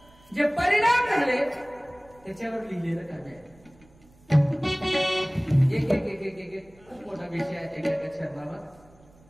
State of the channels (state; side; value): noise; right; rumble, 28 dB below the sound